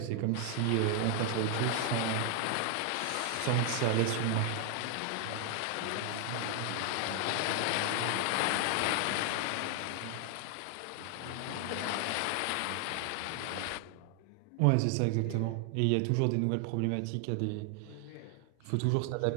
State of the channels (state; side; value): different; both; correlation 0.00